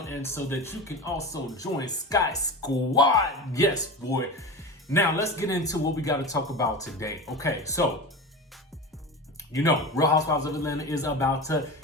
and so that you can also join Sky Squad. Yes, boy. Now let's get into what we got to talk about today. Okay, so you know, Real Housewives of Atlanta is about to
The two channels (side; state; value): both; normal; correlation 0.28